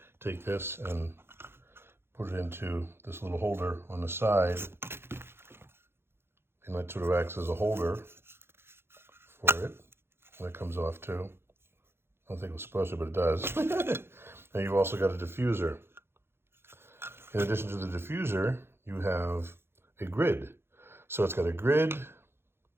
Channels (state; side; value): late; left; 0.11 ms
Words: take this and put it into this little holder on the side. And that sort of acts as a holder for it. And it comes off too. I don't think it was supposed to, but it does. And you've also got a diffuser. In addition to the diffuser, you have a grid. So it's got a grid,